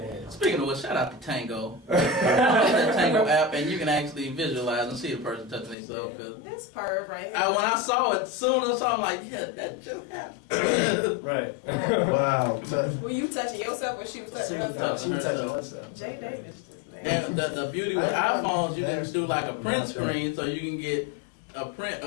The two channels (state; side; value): drops out; right; at 5.8 s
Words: Speaking of which, shout out to Tango. That Tango app, and you can actually visualize and see a person touching themselves. Cause This perv right here. when I saw it, soon as I saw it, I'm like, yeah, that just happened. right. Wow. Were you touching yourself or she was touching She was herself? She was touching herself. Jay Davis just And the beauty with iPhones, you can do like a print screen, so you can get a print